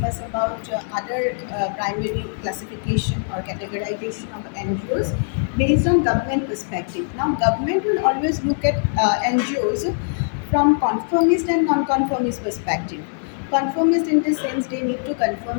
about other primary classification or categorization of NGOs based on government perspective. Now government will always look at NGOs from conformist and non-conformist perspective. Conformist in the sense they need to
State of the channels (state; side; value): silent; right; digital silence